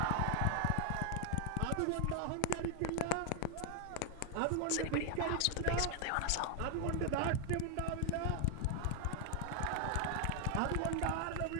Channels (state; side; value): different; both; correlation 0.00